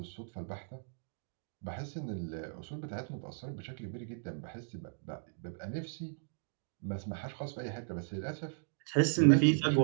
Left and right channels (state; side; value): silent; left; digital silence